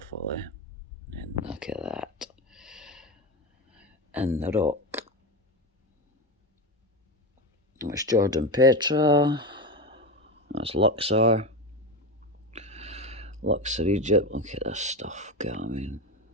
eh? And look at that. And the rock. That's Jordan Petra. That's Luxor. Luxor, Egypt. Look at this stuff. God, I mean,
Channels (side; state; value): both; normal; correlation 0.18